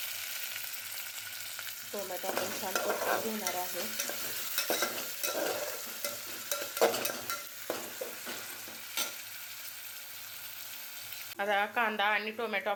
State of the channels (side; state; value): both; identical; correlation 1.00